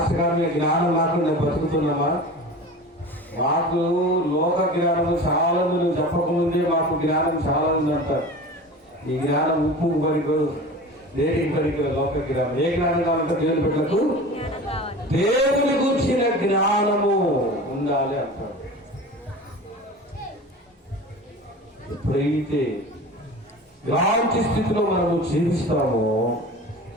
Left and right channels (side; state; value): both; normal; correlation 0.35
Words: గారు మీ జ్ఞానం లేకుండా బతుకుతున్నామా? మాకు లోక జ్ఞానం చాలా మంది, చెప్పకముందే మాకు జ్ఞానం చాలా ఉంది అంటారు. ఈ జ్ఞానం ఉప్పు పనికి, దేనికి పనికి? లోక జ్ఞానం. ఏ జ్ఞానం కావాలంటే దేవుని బిడ్డలకు దేవుని గురించిన జ్ఞానము ఉండాలి అంటారు. ఎప్పుడైతే ఇలాంటి స్థితిలో మనము జీవిస్తామో